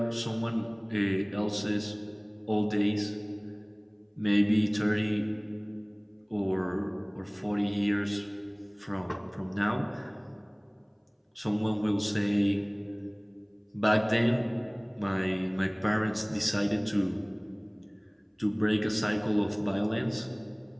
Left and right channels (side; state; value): both; identical; correlation 1.00